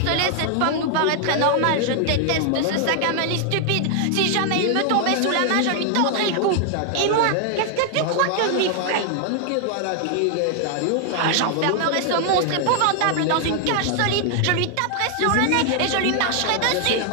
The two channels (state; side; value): different; both; correlation 0.00